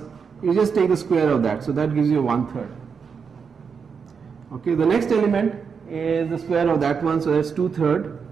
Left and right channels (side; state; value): left; quieter; 6.1 dB